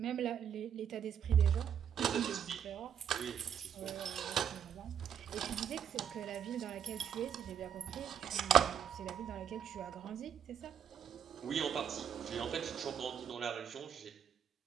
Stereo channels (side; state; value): left; quieter; 8.5 dB